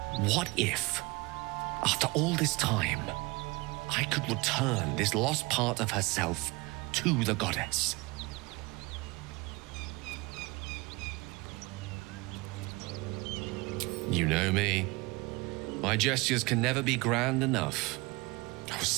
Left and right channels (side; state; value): left; quieter; 24.5 dB